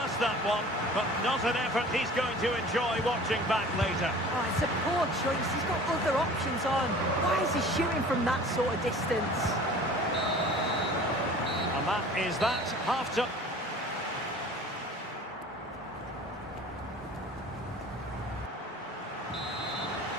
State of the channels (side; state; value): both; normal; correlation 0.44